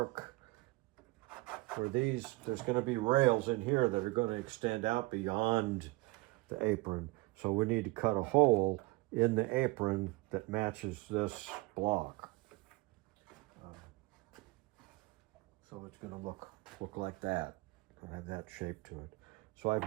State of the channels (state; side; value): quieter; left; 22.7 dB